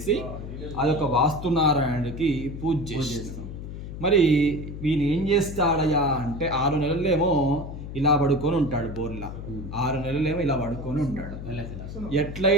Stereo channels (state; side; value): noise; left; hum, 9 dB below the sound